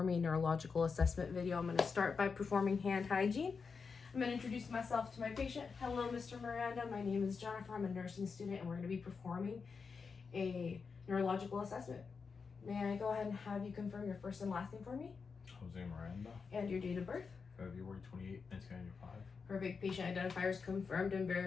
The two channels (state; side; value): quieter; right; 5.2 dB